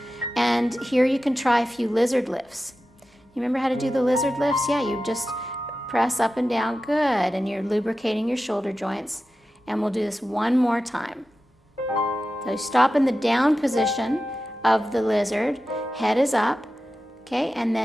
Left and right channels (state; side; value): normal; both; correlation 0.93